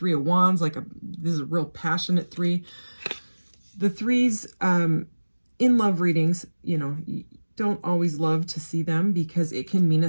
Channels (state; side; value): inverted; both; correlation -1.00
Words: of Wands, this is a real passionate 3. The 3s in love readings, you know, don't always love to see them because it can mean